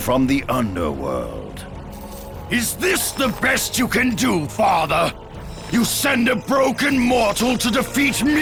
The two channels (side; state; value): both; identical; correlation 1.00